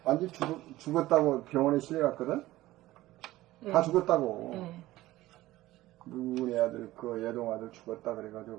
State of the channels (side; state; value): left; quieter; 16.7 dB